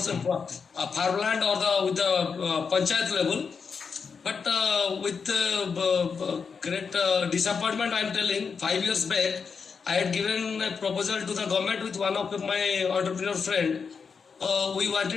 farmland, or with the panchayat level. But with great disappointment, I am telling, 5 years back, I had given a proposal to the government with one of my entrepreneur friend. We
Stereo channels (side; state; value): right; quieter; 5.7 dB